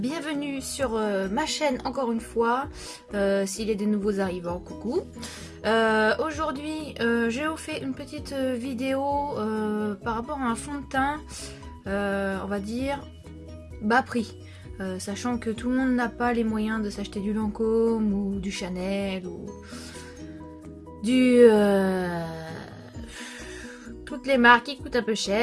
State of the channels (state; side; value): identical; both; correlation 1.00